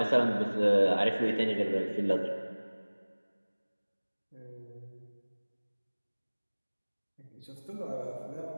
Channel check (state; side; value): inverted; both; correlation -1.00